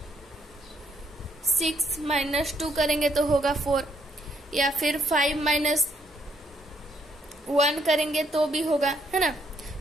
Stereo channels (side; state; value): both; normal; correlation 0.72